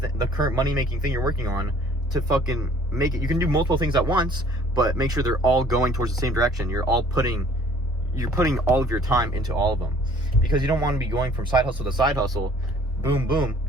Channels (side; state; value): both; normal; correlation 0.55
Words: current money-making thing you're working on to fucking make it. You can do multiple things at once, but make sure they're all going towards the same direction. You're putting all of your time into all of them, because you don't want to be going from side hustle to side hustle, boom, boom.